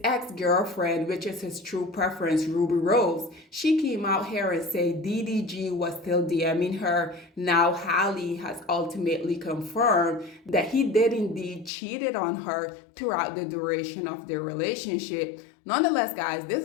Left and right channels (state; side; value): drops out; right; at 11.7 s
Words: ex-girlfriend, which is his true preference, Ruby Rose, she came out here and said DDG was still DMing her. Now Halle has ultimately confirmed that he did indeed cheated on her throughout the duration of their relationship. Nonetheless, guys,